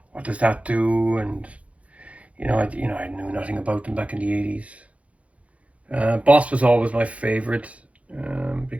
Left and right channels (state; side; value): late; left; 0.065 ms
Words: what does that do? And I knew nothing about them back in the 80s. Boss was always my favorite